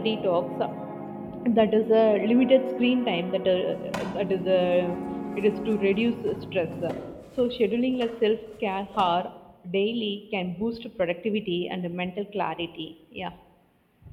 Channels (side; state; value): both; identical; correlation 1.00